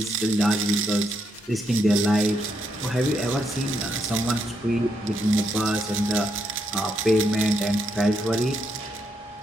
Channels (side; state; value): both; normal; correlation 0.78